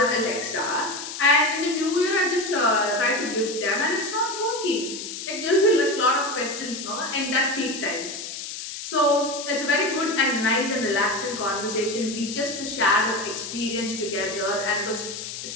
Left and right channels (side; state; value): left; noise; hiss, 8 dB below the sound